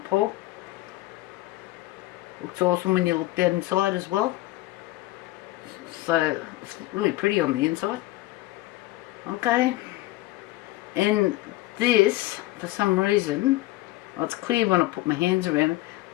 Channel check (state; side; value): quieter; right; 17.5 dB